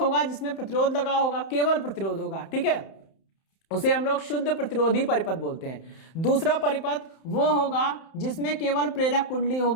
जिसमें प्रतिरोध लगा होगा, केवल प्रतिरोध होगा, ठीक है। उसे हम लोग शुद्ध प्रतिरोधी परिपथ बोलते हैं। दूसरा परिपथ वो होगा जिसमें केवल प्रेरक कुंडली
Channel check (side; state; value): right; late; 31 ms